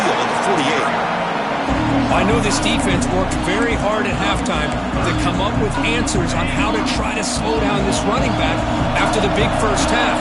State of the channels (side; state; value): both; identical; correlation 1.00